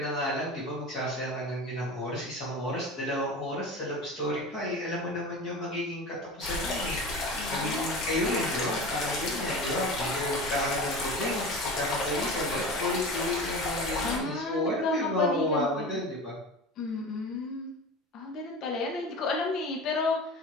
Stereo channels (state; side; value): normal; both; correlation 0.32